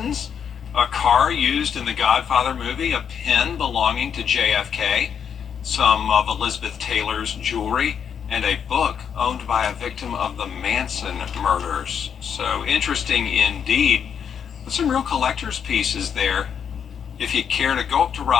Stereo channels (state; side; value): quieter; right; 7.7 dB